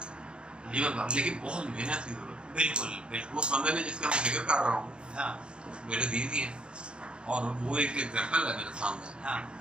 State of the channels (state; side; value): late; left; 0.053 ms